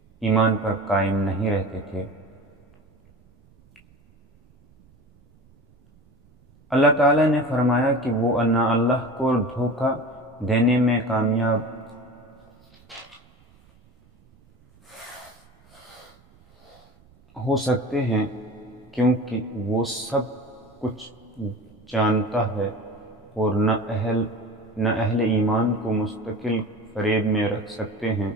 ایمان پر قائم نہیں رہتے تھے۔ اللہ تعالیٰ نے فرمایا کہ وہ نہ اللہ کو دھوکہ دینے میں کامیاب ہو سکتے ہیں کیونکہ وہ سب کچھ جانتا ہے، اور نہ اہل ایمان کو مستقل فریب میں رکھ سکتے ہیں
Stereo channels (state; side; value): noise; right; rumble, 30 dB below the sound